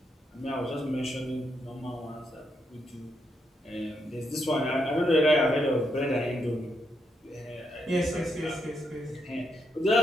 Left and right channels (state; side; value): normal; both; correlation 0.80